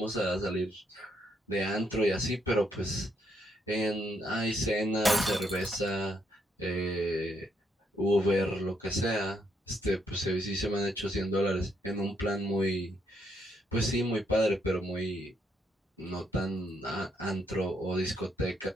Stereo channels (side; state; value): both; normal; correlation 0.75